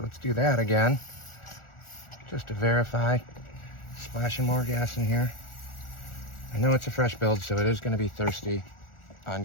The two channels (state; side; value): late; right; 1.4 ms